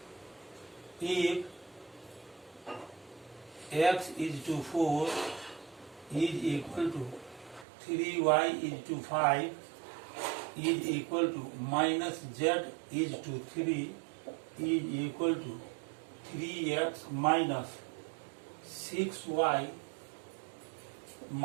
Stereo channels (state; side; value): drops out; left; at 7.7 s